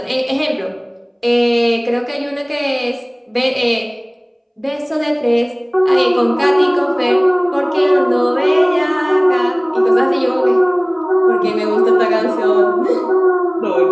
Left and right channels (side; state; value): both; identical; correlation 1.00